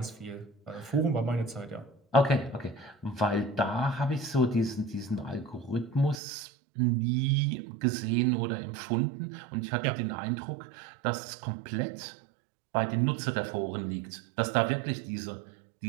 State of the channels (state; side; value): drops out; left; at 6.2 s